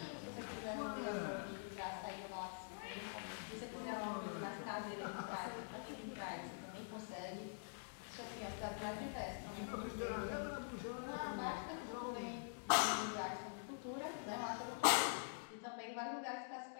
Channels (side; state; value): right; silent; digital silence